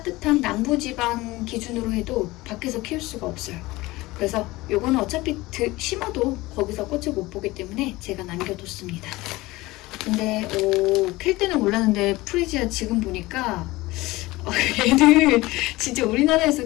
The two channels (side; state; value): right; quieter; 20.0 dB